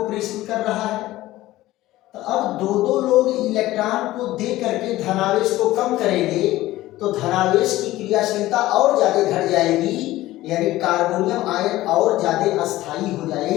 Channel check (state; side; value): quieter; right; 16.4 dB